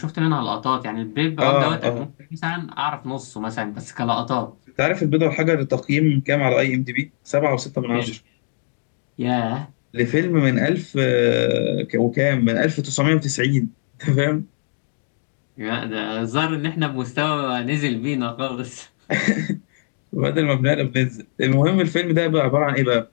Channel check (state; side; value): silent; right; digital silence